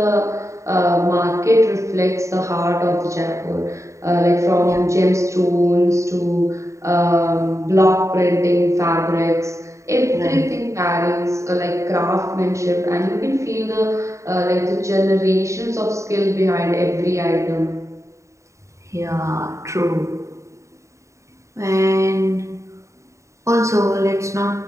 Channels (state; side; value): late; left; 0.14 ms